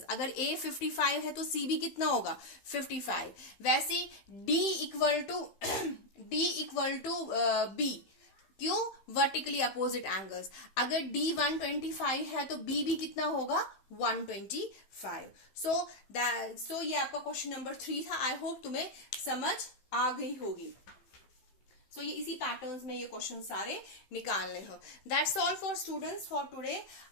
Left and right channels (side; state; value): right; late; 15 ms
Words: अगर A 55 है तो C भी कितना होगा? 55। वैसे D इक्वल टू B। क्यों? Vertically opposite angles. अगर D 125 है तो B भी कितना होगा? 125। सो ये आपका क्वेश्चन नंबर 3 था। आई होप तुम्हें समझ आ गई होगी। सो ये इसी पैटर्न्स में ये क्वेश्चन सारे निकालने हो। That's all for students for today.